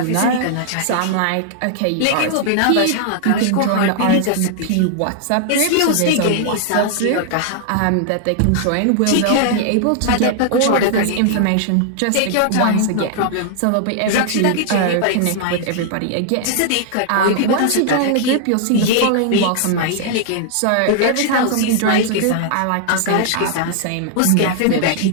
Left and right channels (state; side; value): different; both; correlation 0.00